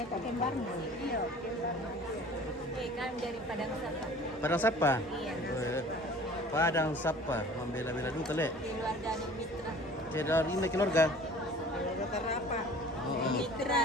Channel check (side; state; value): both; normal; correlation 0.47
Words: kok kembarnya? Iya, kembarnya. Kan dari Padang Sapa. Padang Sapa? Iya. Padang Sapa, membela-bela dulu tele. Keluarga Mitra. Saya dari ini keluarga. Apa? Oo.